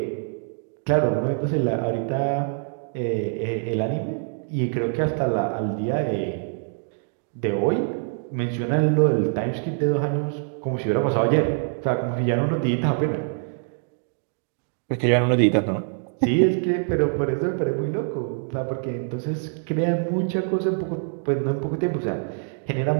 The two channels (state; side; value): silent; left; 62 dB below the other